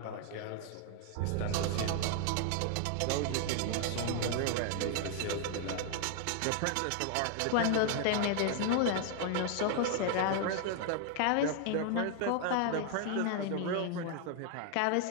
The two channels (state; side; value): different; both; correlation 0.00